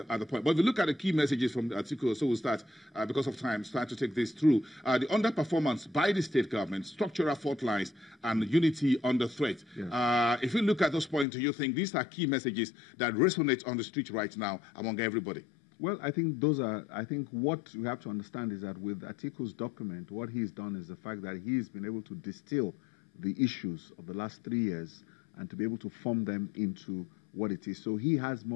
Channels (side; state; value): right; drops out; at 11.2 s